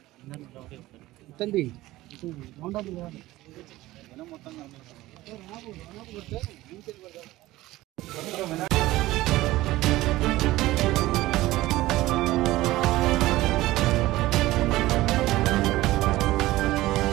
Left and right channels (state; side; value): quieter; left; 17.3 dB